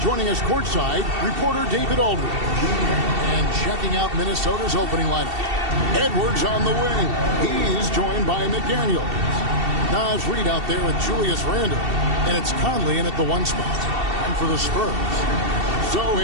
joining us courtside, reporter David Aldridge. And checking out Minnesota's opening lineup, Edwards on the wing. He's joined by McDaniels. Naz Reid out there with Julius Randle. And it's Conley in at the 1 spot. And for the Spurs,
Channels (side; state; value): left; late; 2.7 ms